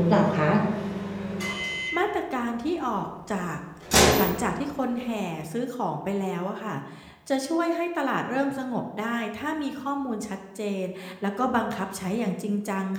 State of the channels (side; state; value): both; identical; correlation 1.00